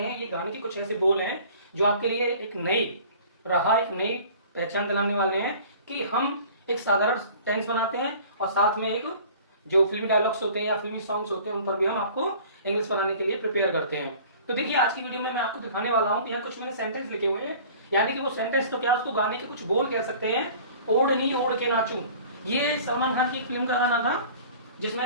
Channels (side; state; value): both; inverted; correlation -0.46